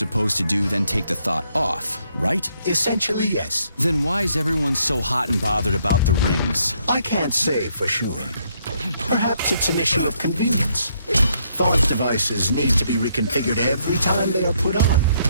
to do, then take the thought off, right? Essentially, yes. Then why is everyone so hot and bothered about the rings? I can't say for sure. Perhaps it's an issue of convenience. Thought devices need to be reconfigured every time they are put on.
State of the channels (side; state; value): both; inverted; correlation -0.71